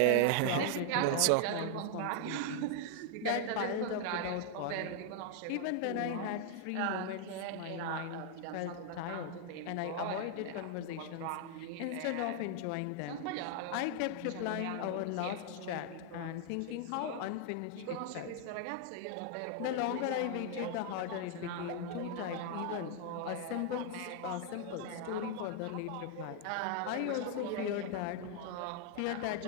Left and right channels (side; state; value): both; different; correlation 0.00